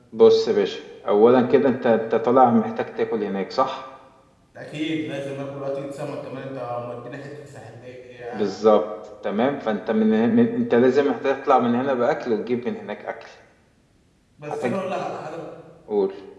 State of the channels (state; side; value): identical; both; correlation 1.00